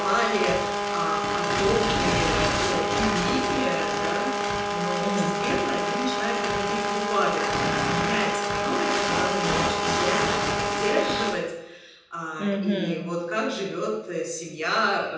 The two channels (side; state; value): both; identical; correlation 1.00